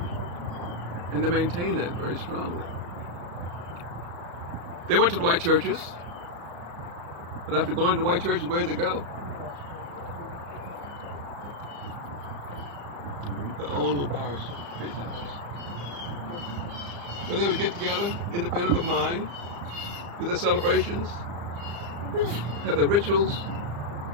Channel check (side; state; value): left; late; 35 ms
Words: And they maintained that very strongly. They went to the white churches, but after going to the white churches, where'd they go? their own little bars, base houses. So they would get together, independent of mine, do their celebrations, have their rituals,